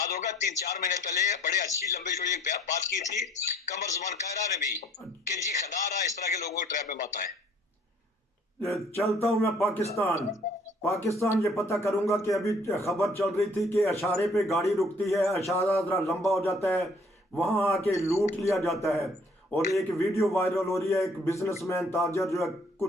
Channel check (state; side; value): normal; both; correlation 0.59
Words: होगा 3-4 महीने पहले बड़े अच्छी लंबी चौड़ी एक बात की थी कमर जुमान कायरा ने भी कि जी खदारा इस तरह के लोगों को ट्रैप में मत आए। चलता हूं मैं पाकिस्तान ये पता करूंगा कि अभी खबर चल रही थी कि अशारे पे गाड़ी रुकती है, अशारा जरा लंबा हो जाता है, वहां आके लूट लिया जाता है। और एक वीडियो वायरल हो रही है, एक बिजनेसमैन ताजर जो है